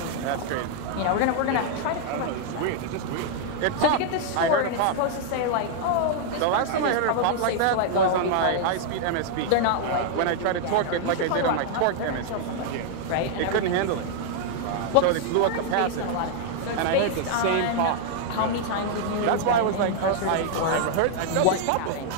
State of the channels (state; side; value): different; both; correlation 0.00